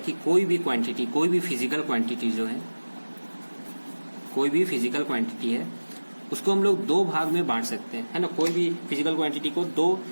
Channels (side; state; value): both; inverted; correlation -1.00